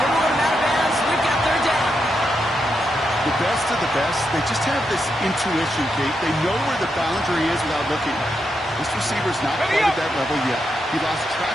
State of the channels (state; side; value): normal; both; correlation 0.83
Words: moving him out of bounds. We've got third down. The best of the best, they just have this intuition, Kate. They know where the boundary is without looking. This receiver's not quite at that level yet. He lost track